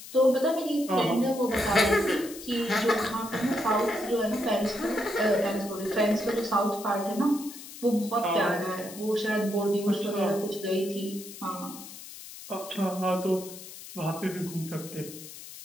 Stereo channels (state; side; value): noise; left; hiss, 14 dB below the sound